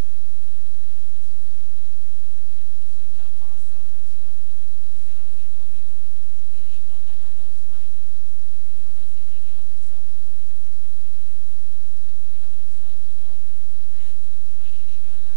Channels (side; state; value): left; silent; digital silence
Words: to help ourselves as well. They say, oh, Igbo people, they live longer than us. Why? Because they take care of themselves more. And the way you live your